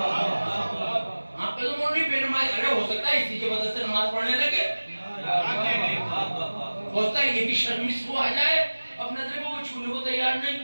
आप पे तो मोड़ी बेनमाज, अरे हो सकता है इसी की वजह से नमाज पढ़ने लगे, होता है ये भी शर्मिश को आ जाए, अब नजर को वो छूने को तैयार नहीं।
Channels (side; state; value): both; inverted; correlation -1.00